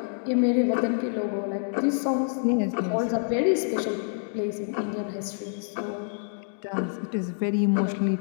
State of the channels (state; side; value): silent; right; digital silence